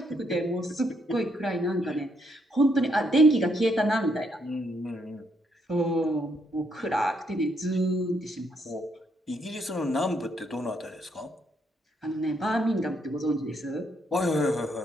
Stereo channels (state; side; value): normal; both; correlation 0.74